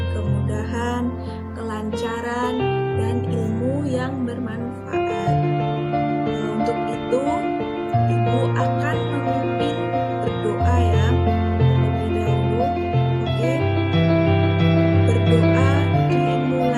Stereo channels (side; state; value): both; identical; correlation 1.00